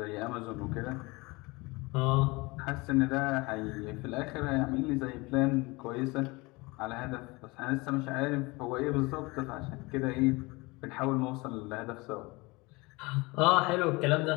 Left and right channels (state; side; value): quieter; right; 24.5 dB